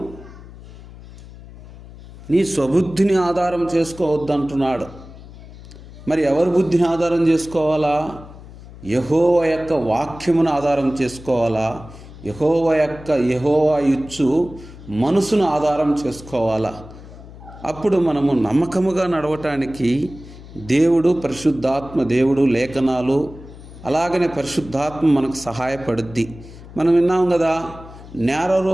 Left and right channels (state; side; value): noise; left; hum, 17 dB below the sound